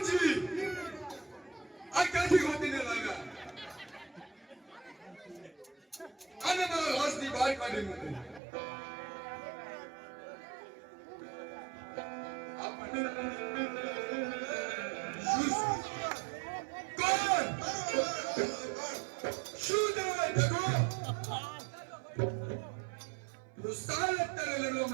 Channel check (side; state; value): left; drops out; at 8.4 s